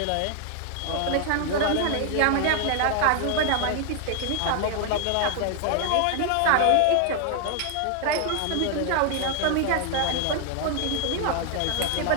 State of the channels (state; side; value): different; both; correlation 0.00